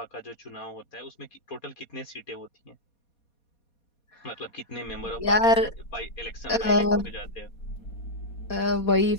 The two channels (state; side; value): late; right; 4.2 ms